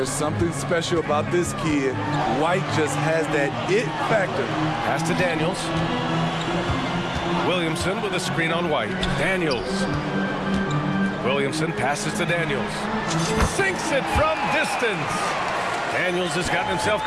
something special about this kid. White just has that it factor. Pass to Daniels. Williamson with a screen on White. Daniels. Williamson passes to Daniels. Sinks it from distance. Daniels has gotten himself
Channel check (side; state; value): both; identical; correlation 1.00